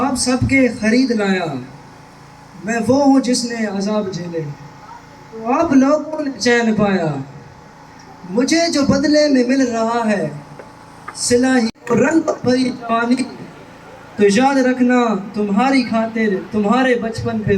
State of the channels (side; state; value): both; identical; correlation 1.00